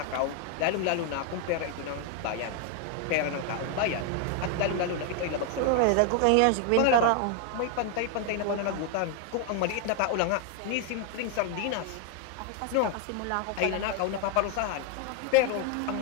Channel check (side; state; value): both; different; correlation 0.01